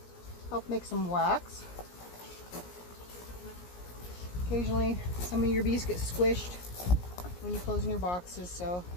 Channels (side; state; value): right; late; 17 ms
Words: help make some wax. Occasionally, some of your bees get squished when you're closing your boxes, so